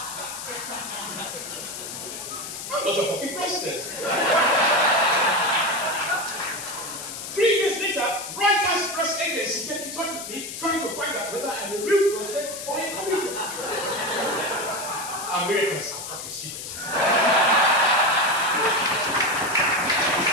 I'm not a fucking president. 3 years later, Reuters press agency gets in touch with me, trying to find out whether I'm a real president or a comedian. Americans are fucking stupid.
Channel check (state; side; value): noise; left; hiss, 8 dB below the sound